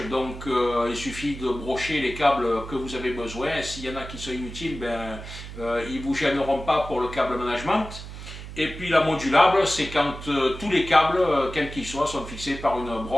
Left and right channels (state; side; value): noise; right; hum, 11 dB below the sound